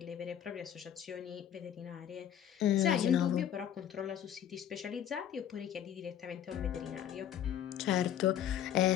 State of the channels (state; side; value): quieter; right; 10.1 dB